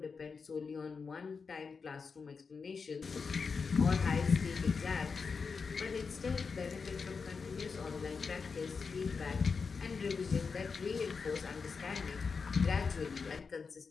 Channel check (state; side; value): quieter; right; 5.2 dB